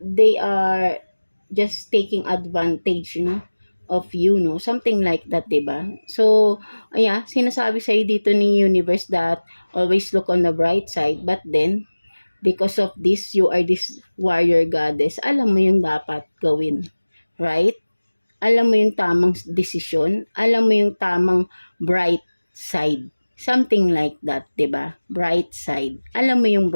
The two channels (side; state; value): both; inverted; correlation -1.00